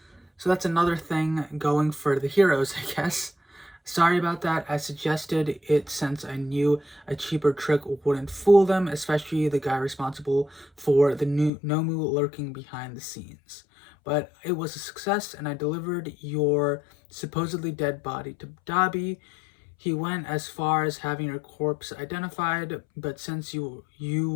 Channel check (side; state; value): right; drops out; at 11.5 s